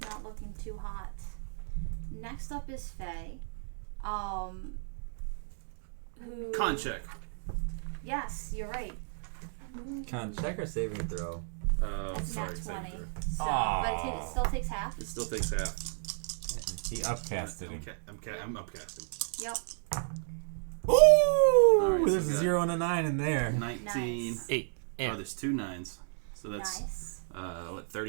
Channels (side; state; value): left; silent; digital silence